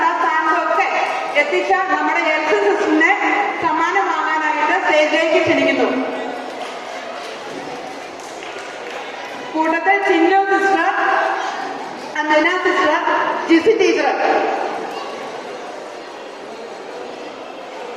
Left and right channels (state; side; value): identical; both; correlation 1.00